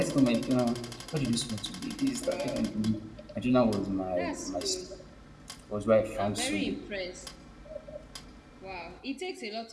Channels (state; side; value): identical; both; correlation 1.00